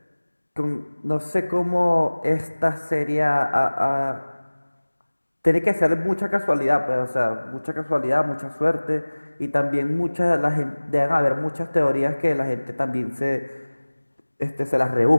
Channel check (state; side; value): inverted; both; correlation -1.00